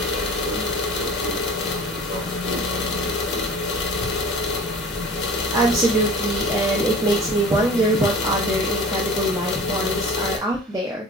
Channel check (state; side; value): normal; both; correlation 0.41